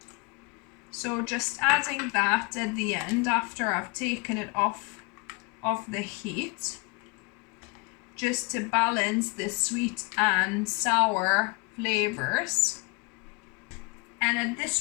So just adding that at the end after I've taken it off the heat, just to balance the sweet and sour flavors. And at this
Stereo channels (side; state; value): right; quieter; 29.3 dB